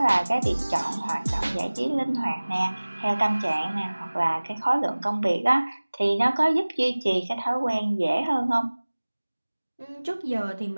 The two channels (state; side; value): inverted; both; correlation -1.00